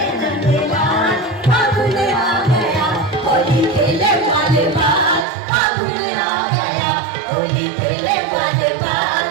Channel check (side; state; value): left; drops out; at 5.2 s